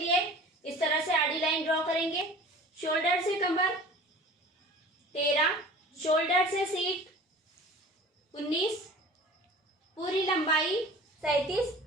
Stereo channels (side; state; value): both; normal; correlation 0.42